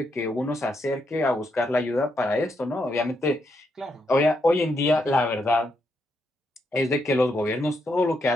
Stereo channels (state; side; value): normal; both; correlation 0.79